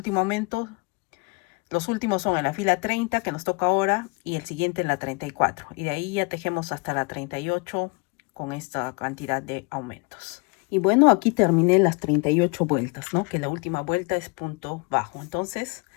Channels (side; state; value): right; quieter; 31.0 dB